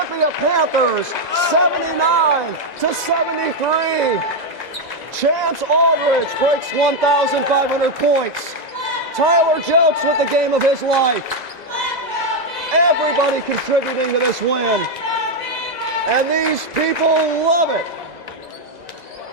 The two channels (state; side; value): late; left; 2.0 ms